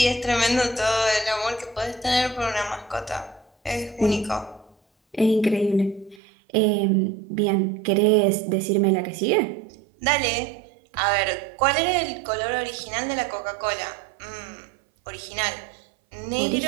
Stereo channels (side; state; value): left; drops out; at 6.2 s